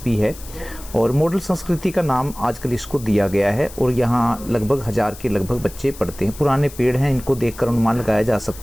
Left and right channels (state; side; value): noise; left; hiss, 17 dB below the sound